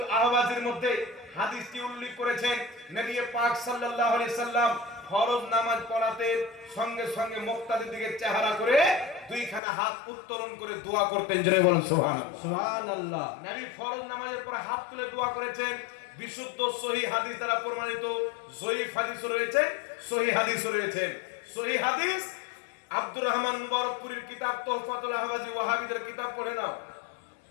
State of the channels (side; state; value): right; drops out; at 9.6 s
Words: আহওয়াজের মধ্যে হাদিসটি উল্লেখ করেছেন। নবী পাক সাল্লাল্লাহু আলাইহি সাল্লাম ফরজ নামাজ পড়াতে সঙ্গে সঙ্গে মুক্তাদির দিকে চেহারা করে দুইখানা হাত উত্তোলন করে দোয়া করতেন। জোরে বলেন সুবহানাল্লাহ। সুবহানাল্লাহ। নবী ফরজ নামাজের পরে হাত তুলে দোয়া করেছেন। বিশুদ্ধ সহিহ হাদিস দ্বারা প্রমাণিত, জয়ীফ হাদিসও রয়েছে, সহিহ হাদিসও রয়েছে। সহিহ হাদিস আব্দুর রহমান মুবারকপুরীর কিতাব তোহফাতুল আহওয়াজি, ওয়াহাবীদের কিতাব পড়ে নাও।